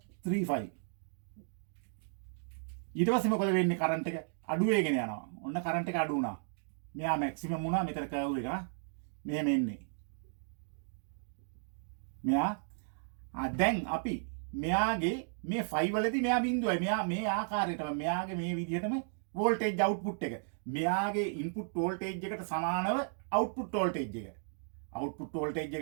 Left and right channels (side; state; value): left; silent; digital silence